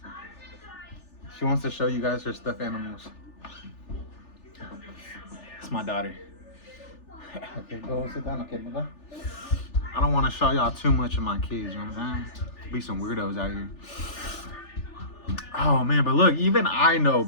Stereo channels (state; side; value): late; right; 3.4 ms